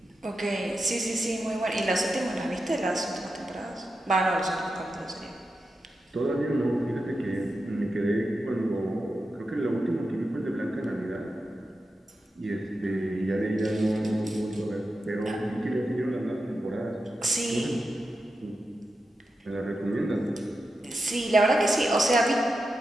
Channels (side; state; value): both; normal; correlation 0.89